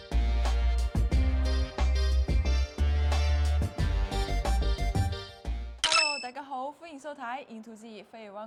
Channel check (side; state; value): both; identical; correlation 1.00